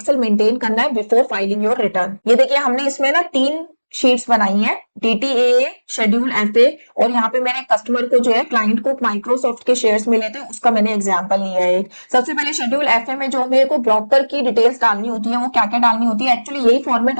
मेंटेन करना है बिफोर फाइलिंग योर रिटर्न। ये देखिए हमने इसमें ना 3 शीट्स बनाई हैं, DTAA, शेड्यूल FA और यहाँ पे मैंने कस्टमर को जो है क्लाइंट को माइक्रोसॉफ्ट के शेयर्स मिले थे उसका मैंने एग्जांपल लिया है एक। सबसे पहले शेड्यूल FA में जो मेरे को ब्रोकर की डिटेल्स डालनी होती है वो क्या क्या डालनी होती है, एक्चुअली यही फॉर्मेट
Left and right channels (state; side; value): inverted; both; correlation -1.00